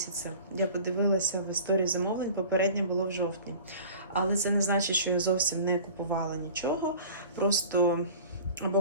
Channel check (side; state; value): both; inverted; correlation -0.42